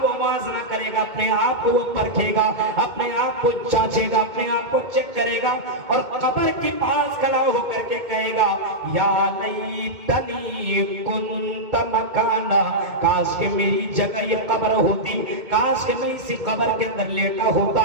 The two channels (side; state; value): left; late; 2.2 ms